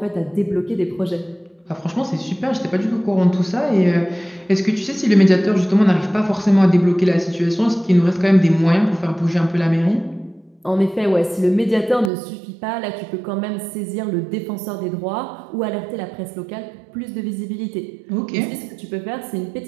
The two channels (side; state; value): left; drops out; at 12.1 s